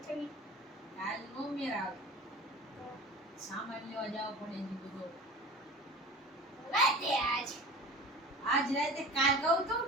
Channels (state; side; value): normal; both; correlation 0.37